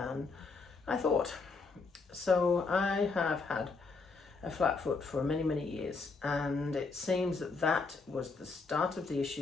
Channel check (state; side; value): quieter; right; 4.3 dB